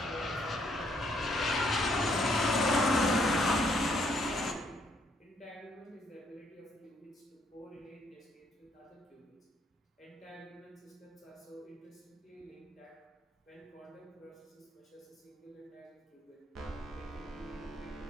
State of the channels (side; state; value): both; normal; correlation 0.70